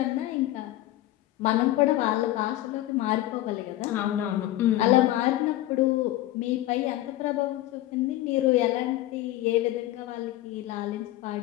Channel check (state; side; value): quieter; right; 15.4 dB